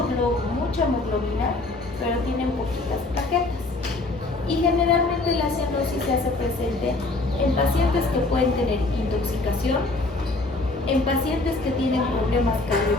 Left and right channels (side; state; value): right; quieter; 3.1 dB